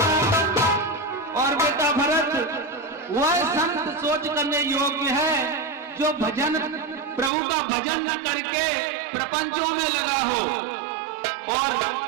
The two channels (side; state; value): left; drops out; at 7.3 s